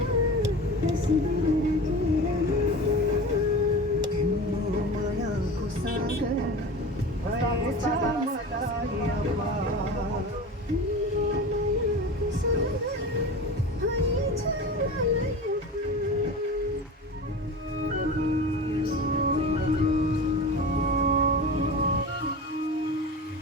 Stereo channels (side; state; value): both; normal; correlation 0.32